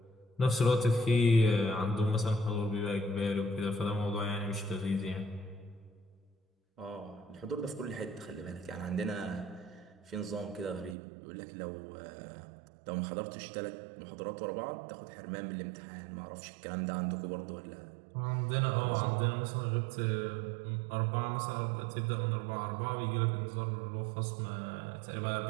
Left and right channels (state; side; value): drops out; left; at 11.0 s